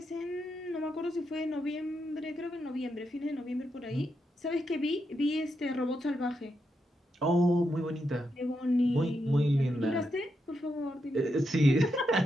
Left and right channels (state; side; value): normal; both; correlation 0.83